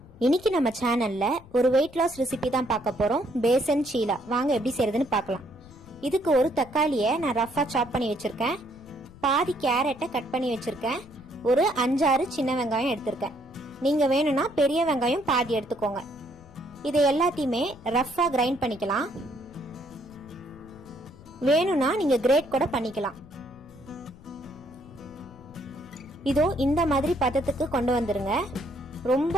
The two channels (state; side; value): noise; left; rumble, 22 dB below the sound